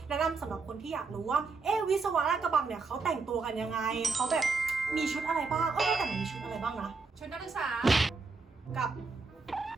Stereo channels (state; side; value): quieter; left; 4.4 dB